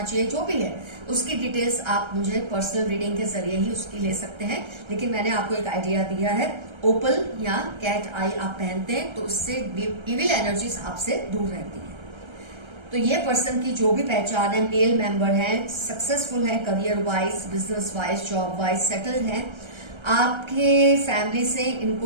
चाहिए, जो भी है उसकी डिटेल्स आप मुझे पर्सनल रीडिंग के जरिए ही उसकी ले सकते हैं, लेकिन मैंने आपको एक आइडिया दिया है। ओपल या कैट आई आप पहनते हैं तो उससे इविल एनर्जीज आपसे दूर रहती है। तो ये पर्सन की जो भी पहचान है, मेल मेंबर है, सक्सेसफुल है career wise, business wise, job wise, settled है, आपके फैमिली से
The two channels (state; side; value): late; left; 1.3 ms